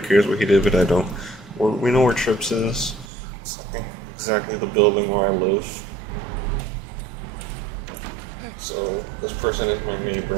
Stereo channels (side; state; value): left; drops out; at 3.1 s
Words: what he did, but I don't. We know where Tripp's is. It's, I think, exactly the building where I live. So, this person is my